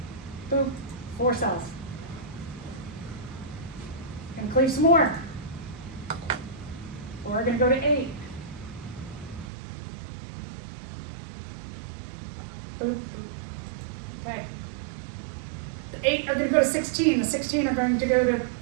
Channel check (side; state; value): left; drops out; at 9.5 s